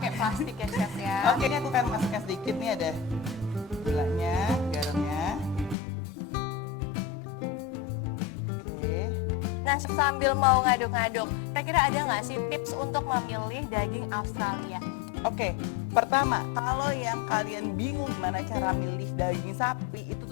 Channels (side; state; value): right; drops out; at 5.8 s